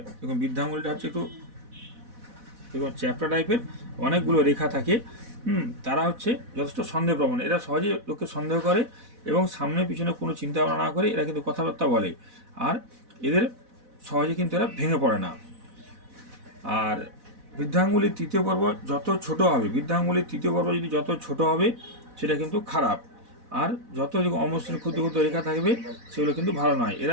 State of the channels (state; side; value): late; left; 4.1 ms